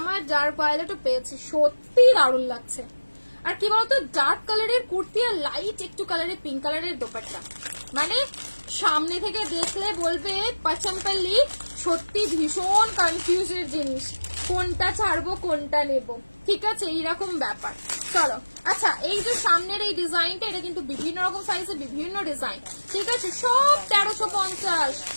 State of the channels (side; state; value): both; inverted; correlation -1.00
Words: আমার ডার্ক ভায়োলেটও পেয়েছি, সত্যি দারুণ লাগছে। আর কি বলতো, ডার্ক কালারের কুর্তি আর লাইট একটু কালারের পিঙ্ক কালারের দোপাট্টা, মানে সামনে থেকে দেখলে বলবে পাচাম্পাল্লি সত্যি ভীষণ কনফিউজের জিনিস, কোনটা ছাড়বো কোনটা নেব, ঠিক আছে? এইরকম ব্যাপার। চলো আচ্ছা, এই যে সামনের এই ডিজাইনটা, এটা কিন্তু বিভিন্ন রকম সাইজে বিভিন্ন ডিজাইন, ঠিক আছে? সব 1350,